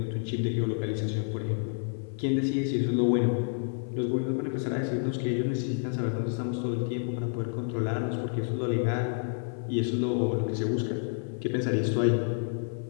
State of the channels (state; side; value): silent; right; 58 dB below the other